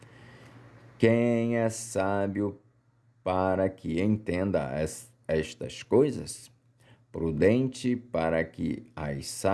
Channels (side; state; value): both; identical; correlation 1.00